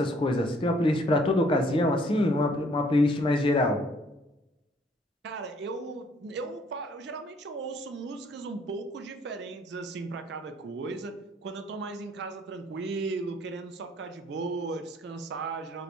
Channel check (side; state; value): both; normal; correlation 0.62